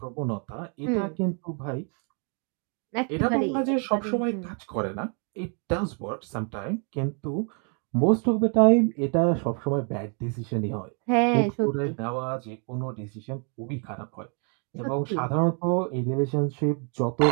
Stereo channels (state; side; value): quieter; left; 39.3 dB